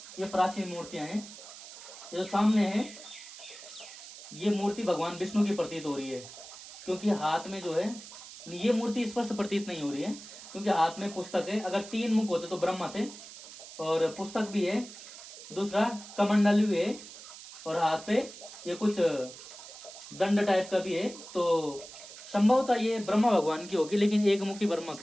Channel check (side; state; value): right; noise; hiss, 15 dB below the sound